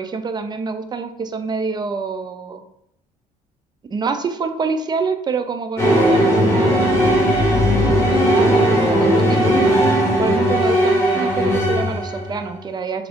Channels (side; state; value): both; normal; correlation 0.67